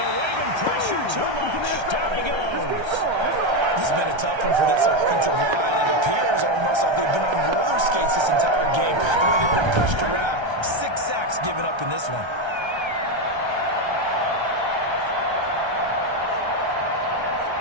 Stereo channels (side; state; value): left; late; 1.3 ms